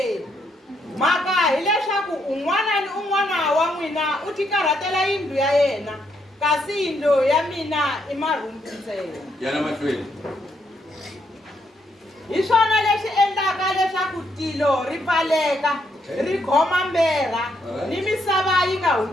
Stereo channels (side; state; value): both; normal; correlation 0.76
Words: Maka hileswaku un'wana ni un'wana wa n'wina u tikarhatela yindlu ya yena kasi yindlu ya mina i marhumbu ntsena. Yana mahlweni. Hi swona leswi endlaka leswaku tilo ri pfaleka ri khoma mbera ni misava yi nga